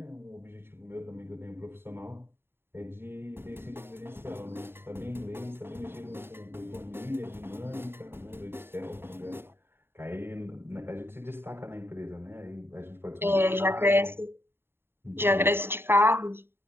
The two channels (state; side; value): late; left; 0.11 ms